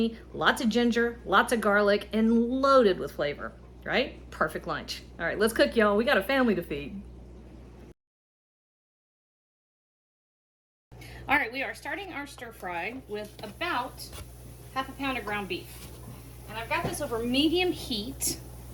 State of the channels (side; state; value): both; identical; correlation 1.00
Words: lots of ginger, lots of garlic, and loaded with flavor, right? Perfect lunch. All right, let's cook, y'all. We got a family to feed. All right, we are starting our stir fry with about half a pound of ground beef. And I've got this over medium heat.